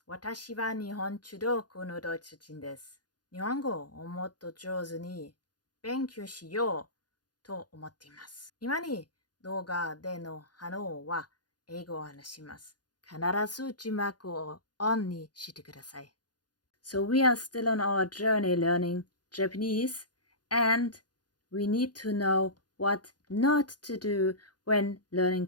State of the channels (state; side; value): late; right; 0.69 ms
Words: 私は日本中国のドイツ人です。日本語をもっと上手に勉強しようと思っています。今に動画での反応は英語を話します。必ず字幕をオンにしてください。So we are still on our journey learning Japanese and we need to know what not to do when learning